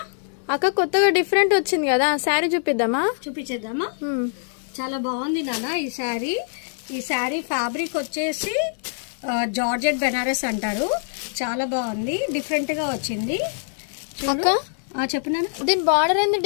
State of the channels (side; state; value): right; silent; digital silence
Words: అక్క కొత్తగా డిఫరెంట్ వచ్చింది కదా, శారీ చూపిద్దామా? చూపించేద్దామా? చాలా బాగుంది నాన్న ఈ శారీ. ఈ శారీ ఫ్యాబ్రిక్ వచ్చేసి జార్జెట్ బెనారస్ అంటారు. చాలా బాగుంది, డిఫరెంట్ గా వచ్చింది. అక్క చెప్పు నాన్న. దీని బార్డర్ ఏంది